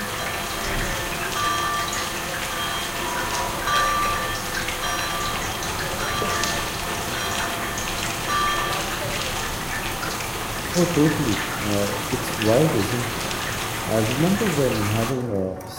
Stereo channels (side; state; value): both; identical; correlation 1.00